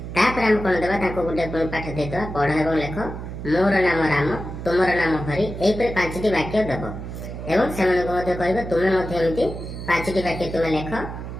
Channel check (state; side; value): noise; right; hum, 8 dB below the sound